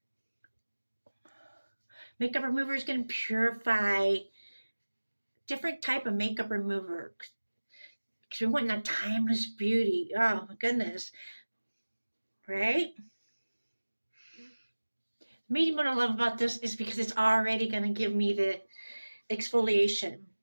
Makeup remover is going to purify different type of makeup remover because we want that timeless beauty. Oh my goodness. Right? Maybe what I love about this is because it's already going to give me the exfoliation.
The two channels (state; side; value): inverted; both; correlation -1.00